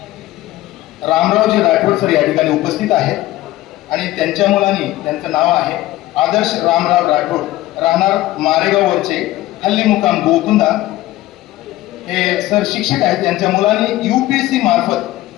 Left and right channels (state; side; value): quieter; right; 16.3 dB